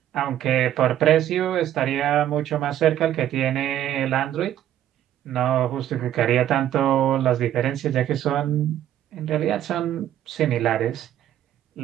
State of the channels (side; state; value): left; quieter; 11.7 dB